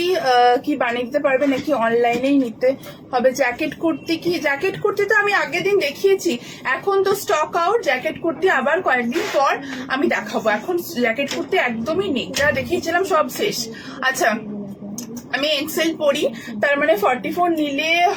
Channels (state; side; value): identical; both; correlation 1.00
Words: কি বানিয়ে দিতে পারবে নাকি অনলাইনেই নিতে হবে? জ্যাকেট কুর্তি কি, জ্যাকেট কুর্তি তো আমি আগের দিন দেখিয়েছি, এখন তো স্টক আউট। জ্যাকেট কুর্তি আবার কয়েকদিন পর আমি দেখাবো, এখন জ্যাকেট কুর্তি একদমই নেই, যা দেখিয়েছিলাম সব শেষ। আচ্ছা আমি এক্সেল পড়ি, তার মানে 44